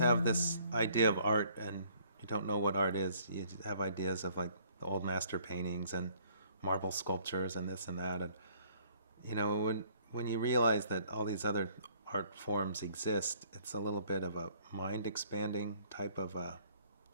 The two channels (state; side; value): inverted; both; correlation -0.61